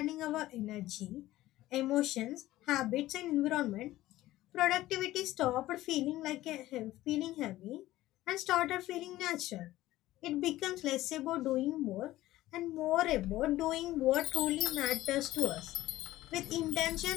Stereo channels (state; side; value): quieter; right; 15.9 dB